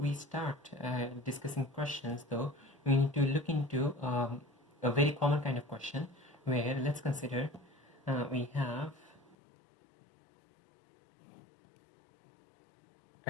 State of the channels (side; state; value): right; drops out; at 9.3 s